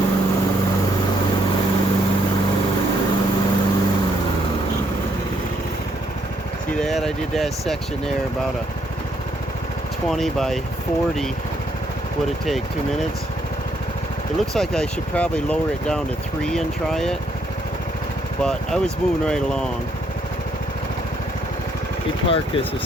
See that? I did that section there about a 20 by 40. Would it take 2 minutes? It looks like I should probably lower it down to 3 and try it, but I was moving right along. Let me park this a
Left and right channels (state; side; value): normal; both; correlation 0.72